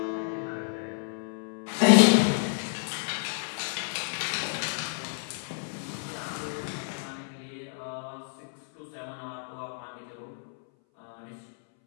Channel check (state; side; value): silent; right; 58 dB below the other